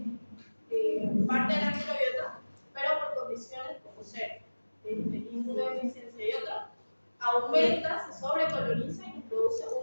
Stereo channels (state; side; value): inverted; both; correlation -1.00